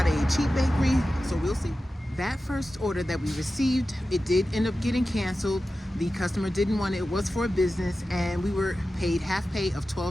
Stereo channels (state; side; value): normal; both; correlation 0.94